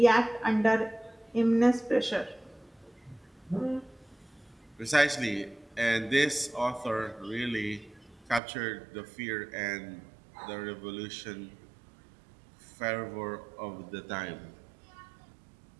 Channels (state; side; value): drops out; left; at 8.4 s